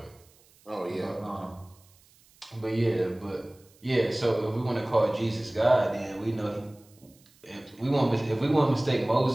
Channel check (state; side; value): noise; right; hiss, 30 dB below the sound